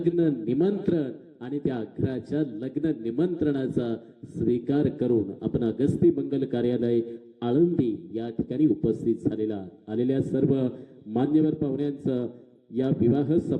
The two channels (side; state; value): both; identical; correlation 1.00